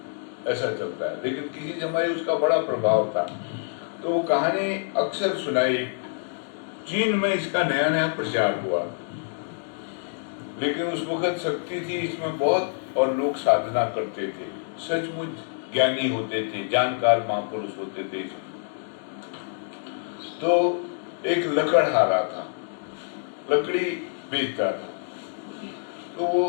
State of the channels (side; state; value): right; silent; digital silence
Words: ऐसा चलता है। लेकिन किसी समय उसका बड़ा प्रभाव था। तो वो कहानी अक्सर सुनाई। चीन में इसका नया नया प्रचार हुआ, लेकिन उस वक्त शक्ति थी इसमें बहुत, और लोग साधना करते थे, सचमुच ज्ञानी होते थे, जानकार महापुरुष होते थे। तो एक लकड़हारा था, लकड़ी बेचता था। तो वो